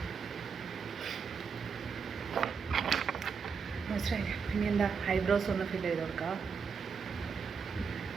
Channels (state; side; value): quieter; left; 5.8 dB